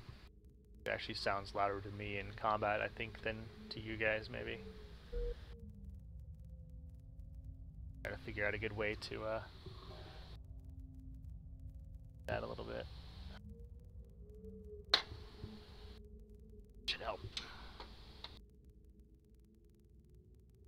It actually sounds louder to me in combat, I think, than to you guys, maybe. Gotta figure out a good way to that a little bit. Should help.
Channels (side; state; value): both; identical; correlation 1.00